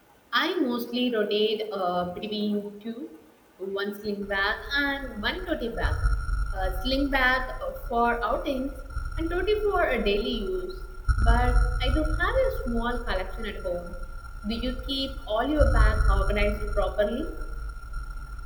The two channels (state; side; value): identical; both; correlation 1.00